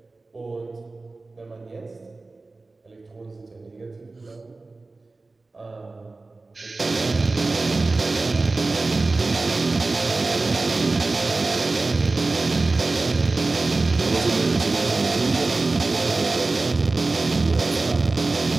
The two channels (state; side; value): quieter; left; 3.5 dB